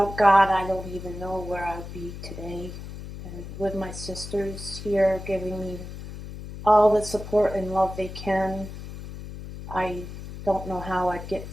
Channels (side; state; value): left; noise; hum, 11 dB below the sound